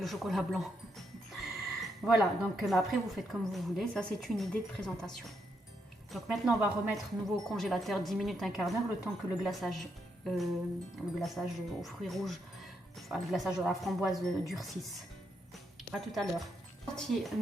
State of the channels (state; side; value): normal; both; correlation 0.79